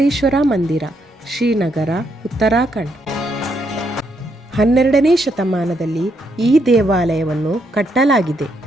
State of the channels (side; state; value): both; normal; correlation 0.76